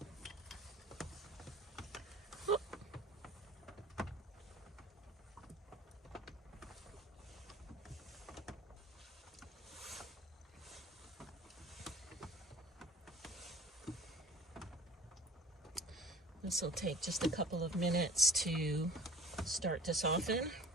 This will take just a couple of minutes to start to soften.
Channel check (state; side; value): normal; both; correlation 0.46